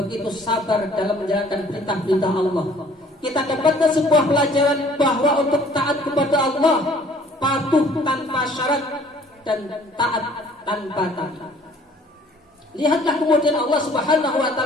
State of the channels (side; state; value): both; normal; correlation 0.56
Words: sabar dalam menjalankan perintah-perintah Allah. Kita dapatkan sebuah pelajaran bahwa untuk taat kepada Allah, patuh tanpa syarat dan taat tanpa tapi. Lihatlah kemudian Allah Subhanahu wa